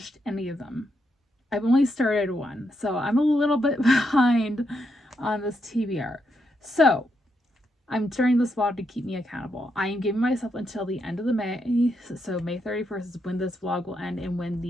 any of them. I've only started one, so I'm a little bit behind on this TBR. So I'm starting this vlog to keep me accountable. I am giving myself until the end of the May, so May 31st is when this vlog will end and when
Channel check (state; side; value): normal; both; correlation 0.81